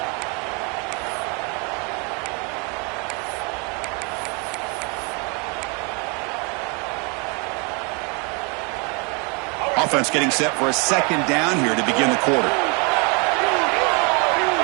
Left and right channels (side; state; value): left; quieter; 32.8 dB